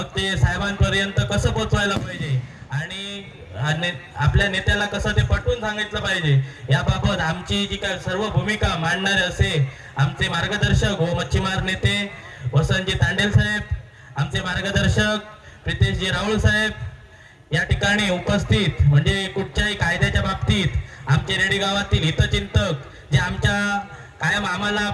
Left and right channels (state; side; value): identical; both; correlation 1.00